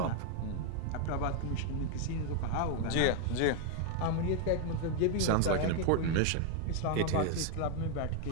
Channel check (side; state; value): both; different; correlation 0.00